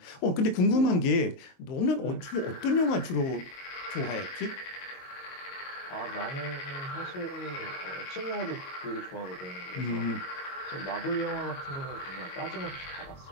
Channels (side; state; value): right; late; 23 ms